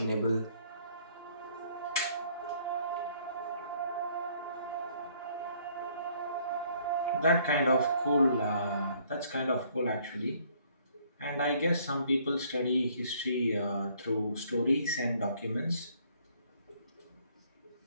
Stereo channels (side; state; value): both; inverted; correlation -0.63